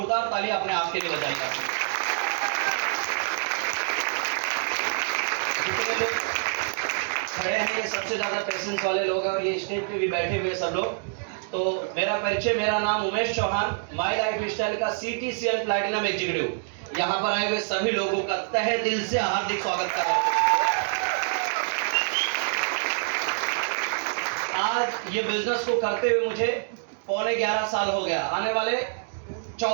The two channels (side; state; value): left; silent; digital silence